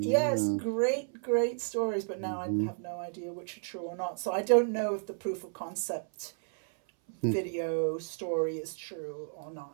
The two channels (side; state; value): left; silent; 56 dB below the other